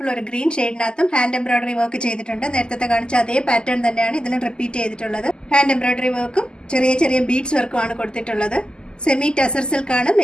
ഒരു ഗ്രീൻ ഷെയ്ഡിനകത്തും ഹാൻഡ് എംബ്രോയിഡറി വർക്ക് ചെയ്തിട്ടുണ്ട്. നേരത്തെ കാണിച്ച അതേ പാറ്റേൺ തന്നെയാണ് ഇതിലും റിപ്പീറ്റ് ചെയ്തിട്ടുള്ളത്. ഹാൻഡ് എംബ്രോയിഡറി വർക്കും ചെറിയ ചെറിയ ബീഡ്സ് വർക്കും ആണ് കൊടുത്തിട്ടുള്ളത്. സെമി ടസർ സിൽക്ക് ആണ്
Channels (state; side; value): late; right; 0.047 ms